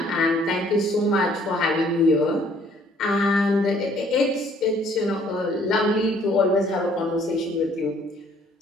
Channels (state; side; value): normal; both; correlation 0.60